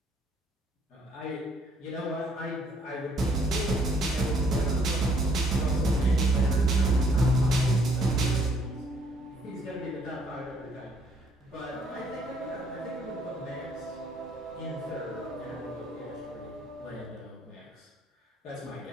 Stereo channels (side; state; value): both; normal; correlation 0.65